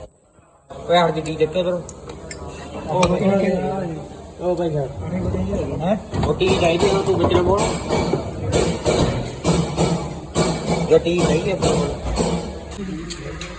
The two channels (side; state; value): both; identical; correlation 1.00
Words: ਓਏ ਹਰ ਜੀ ਦੇਖੋ ਇਧਰ ਉਹ ਭਾਈ ਸਾਹਿਬ ਹੈ ਰੋਟੀ ਚਾਹੀਦੀ ਹੈ ਤੂੰ ਵਿੱਚ ਨਾ ਬੋਲ ਰੋਟੀ ਚਾਹੀਦੀ ਹੈ